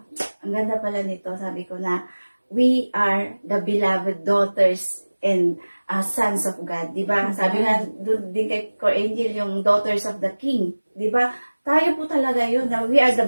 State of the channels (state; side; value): inverted; both; correlation -1.00